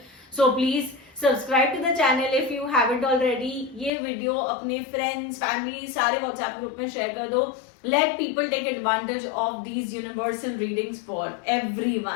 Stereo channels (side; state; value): right; drops out; at 3.9 s